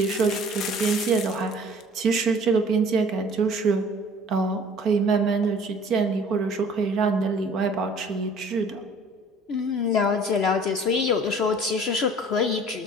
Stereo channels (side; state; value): both; normal; correlation 0.51